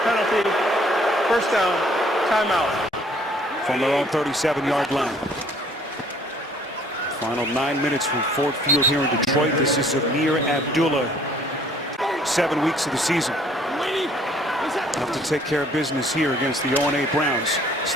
penalty, 1st down, timeout. From their own 37-yard line. Final 9 minutes from Ford Field here in Detroit. This is Amir Abdullah. 7 weeks of the season. Have to take care of business here against the 0-8 Browns.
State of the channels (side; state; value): both; normal; correlation 0.59